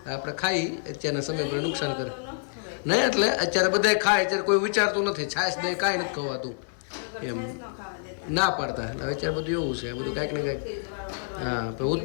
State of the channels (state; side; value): silent; right; 60 dB below the other